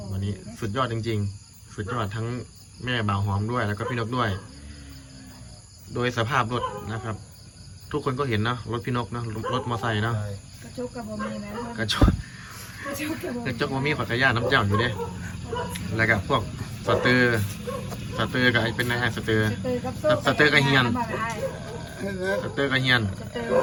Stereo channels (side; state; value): both; identical; correlation 1.00